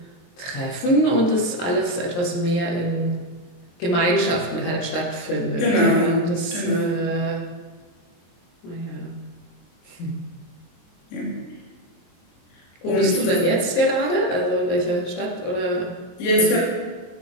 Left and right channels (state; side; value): late; right; 23 ms